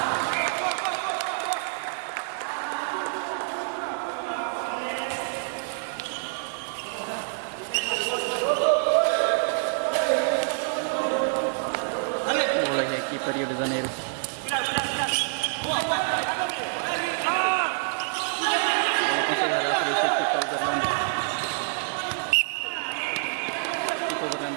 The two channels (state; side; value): silent; left; digital silence